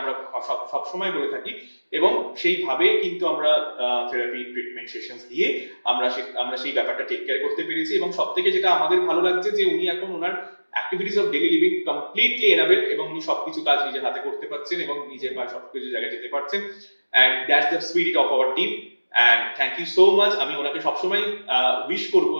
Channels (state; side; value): inverted; both; correlation -1.00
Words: সব সময় বলে থাকি এবং সেইভাবে কিন্তু আমরা থেরাপি ট্রিটমেন্ট সেশনস দিয়ে আমরা সেই ব্যাপারটা টেক কেয়ার করতে পেরেছি এবং সবথেকে যেটা আমাদের ভালো লাগছে যে উনি এখন ওনার activities of daily living completely enable এবং উনি সবকিছু কাজ নিজের হাতে করতে পারছেন এবং নিজের বা সবকিছু জায়গায় যেতে পারছেন। And that's the spirit of our team. And thank you so much. আমি ওনাকে সবসময় উইশ করবো